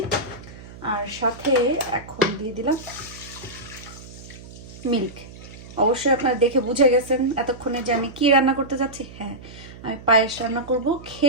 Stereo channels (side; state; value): right; noise; hum, 17 dB below the sound